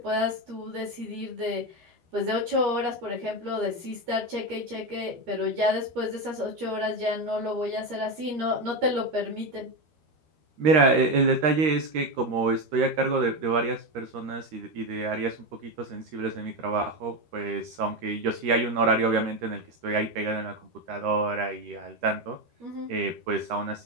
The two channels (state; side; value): late; left; 13 ms